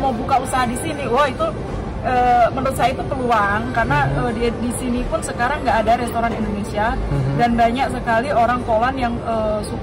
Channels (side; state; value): both; identical; correlation 1.00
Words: mau buka usaha di sini, wah itu menurut saya itu peluang, karena di sini pun sekarang nggak ada restoran Indonesia dan banyak sekali orang Poland yang